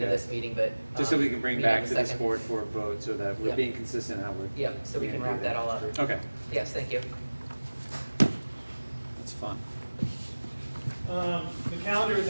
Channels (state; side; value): inverted; both; correlation -1.00